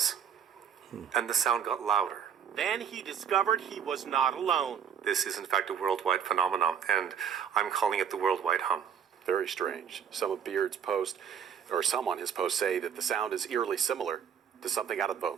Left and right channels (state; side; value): quieter; left; 7.8 dB